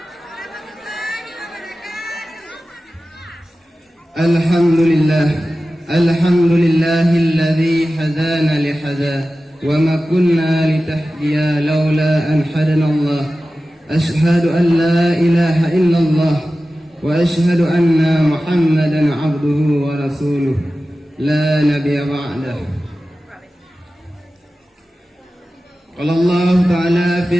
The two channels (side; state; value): both; normal; correlation 0.95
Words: Alhamdulillahilladzi hadana lihada wa ma kunna litahdiya laula an hadanallah. Ashhadu an la ilaha illallah wa ashhadu anna Muhammadan abduhu wa rasuluh la nabiyya ba'dah. Qala Allah Ta'ala